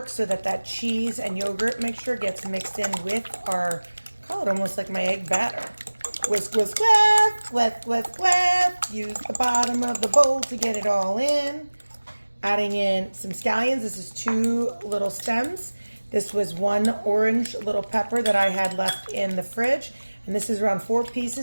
so that that cheese and yogurt mixture gets mixed in with our, call it almost like my egg batter. Whisk, whisk, whisk, whisk, whisk, whisk. Use the bottom of the bowl to get it all in. Adding in some scallions. This is 2 little stems. This was 1 orange little pepper that I had left in the fridge. And this is around 4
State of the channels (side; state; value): both; inverted; correlation -1.00